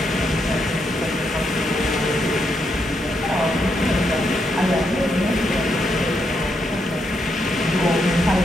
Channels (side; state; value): both; normal; correlation 0.80